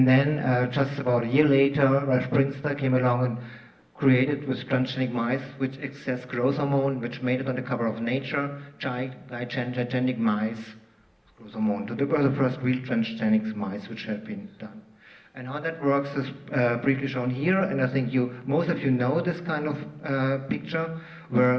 then just about a year later, Ralph Prinster came along and created with transgenic mice which excess growth hormone, which made it on the cover of Nature, gigantic mice growth hormone. So they were the first real transgenic mice which had been done. And how that works is briefly shown here, and I think most of you know this kind of picture,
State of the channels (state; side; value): identical; both; correlation 1.00